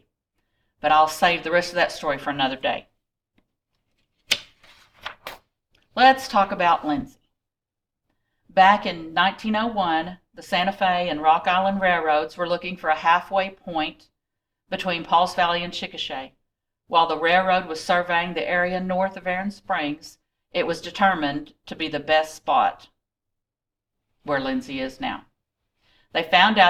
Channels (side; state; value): both; identical; correlation 1.00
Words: But I'll save the rest of that story for another day. Let's talk about Lindsay. Back in 1901, the Santa Fe and Rock Island Railroads were looking for a halfway point between Pauls Valley and Chickasha. While the railroad was surveying the area north of Aaron Springs, it was determined to be the best spot where Lindsay is now. They found